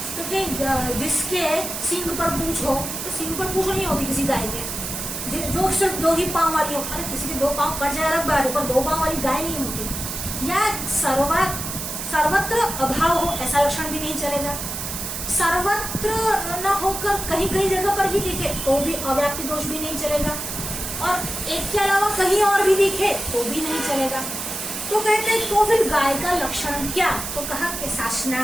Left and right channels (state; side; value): noise; right; hiss, 5 dB below the sound